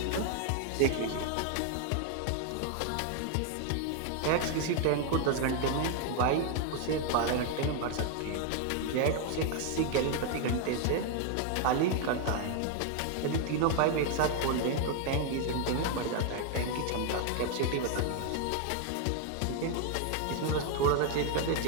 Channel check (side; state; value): both; different; correlation 0.00